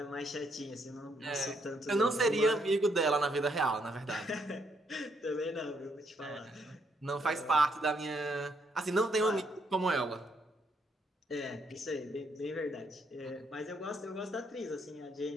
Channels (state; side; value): normal; both; correlation 0.73